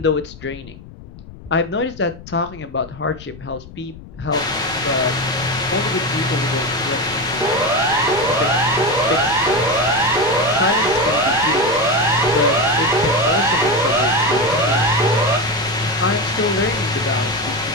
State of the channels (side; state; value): left; noise; rumble, 18 dB below the sound